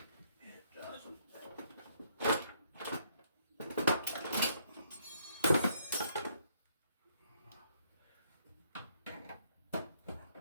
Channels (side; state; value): both; inverted; correlation -0.70